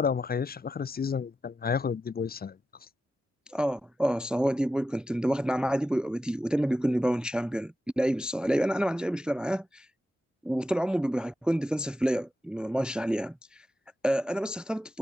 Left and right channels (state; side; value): normal; both; correlation 0.89